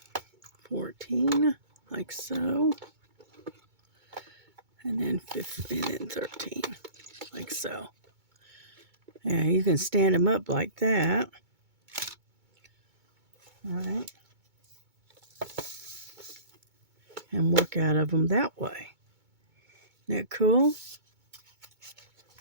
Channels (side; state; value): left; late; 2.2 ms